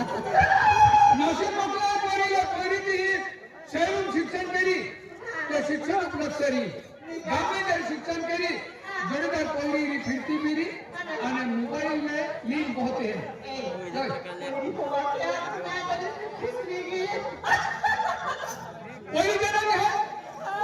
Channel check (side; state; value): both; identical; correlation 1.00